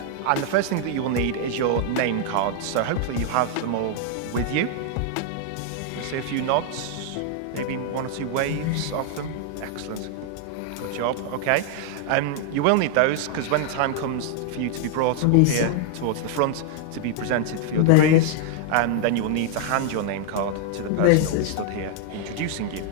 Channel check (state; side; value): different; both; correlation 0.00